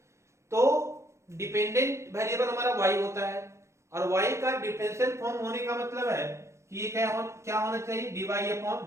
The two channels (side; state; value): left; late; 0.13 ms